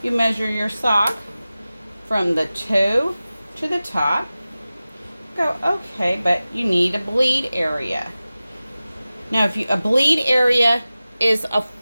you measure your sock from the toe to the top. Go, okay, but you need a bleed area. Now, if a bleed area is a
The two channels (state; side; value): inverted; both; correlation -0.96